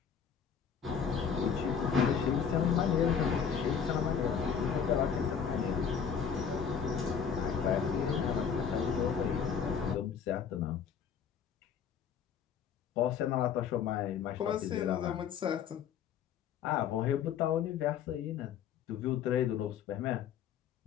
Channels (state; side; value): quieter; right; 7.4 dB